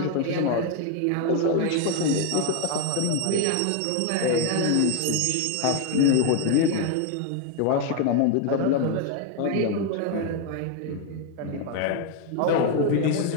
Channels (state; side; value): different; both; correlation 0.01